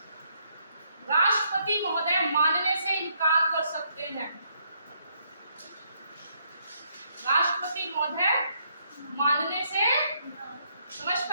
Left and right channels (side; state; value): both; inverted; correlation -0.73